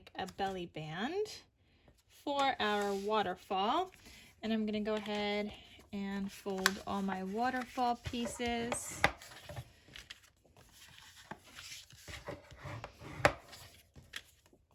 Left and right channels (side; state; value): both; identical; correlation 1.00